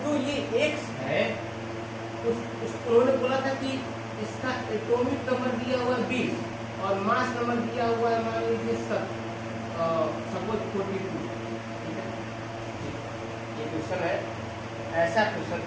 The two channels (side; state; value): both; identical; correlation 1.00